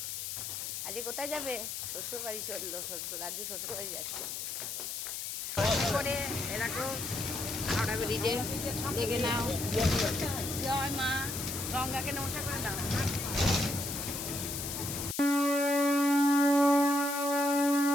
আজকে কোথায় যাবে? শ্বশুর বাড়ি চললো, রাজু শ্বশুর বাড়ি যাচ্ছে করে। এরকম হাওড়া ব্রিজে দেখে নাও। জয় মা, গঙ্গাকে নমস্কার করে দাও।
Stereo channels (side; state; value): left; noise; hiss, 5 dB below the sound